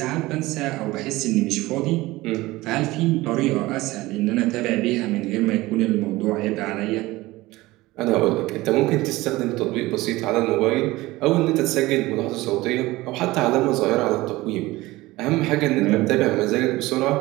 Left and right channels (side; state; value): left; quieter; 19.3 dB